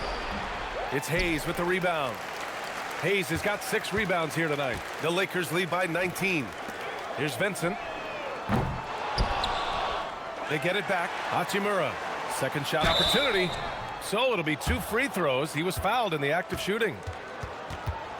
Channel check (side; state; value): both; identical; correlation 1.00